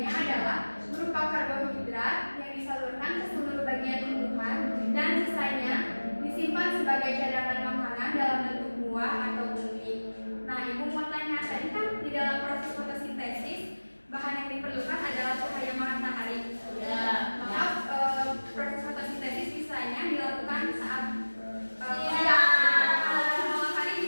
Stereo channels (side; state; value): both; inverted; correlation -1.00